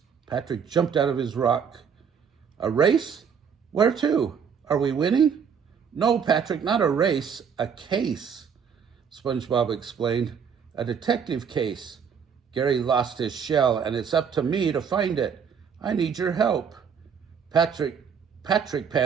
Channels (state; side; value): quieter; left; 7.0 dB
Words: Patrick jumped out of his rock. A race? Where to? Are we winning? No, Patrick, not a race, a case, SpongeBob explained. A detective case. Gary lost his shell, and it's up to me to find it. I need your help. Patrick